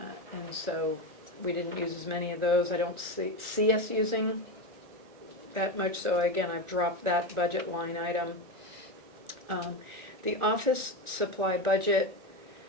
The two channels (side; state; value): left; late; 1.4 ms